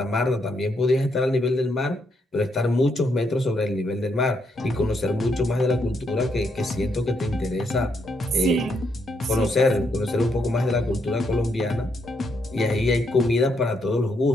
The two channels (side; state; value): both; normal; correlation 0.77